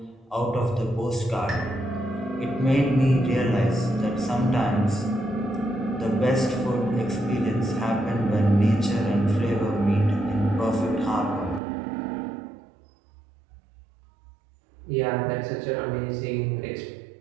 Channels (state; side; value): drops out; left; at 11.6 s